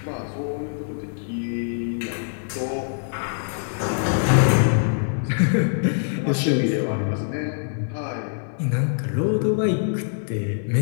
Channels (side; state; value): right; silent; 63 dB below the other